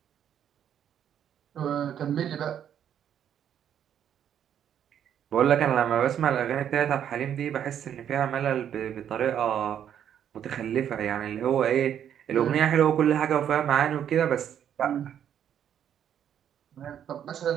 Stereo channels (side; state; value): left; quieter; 9.5 dB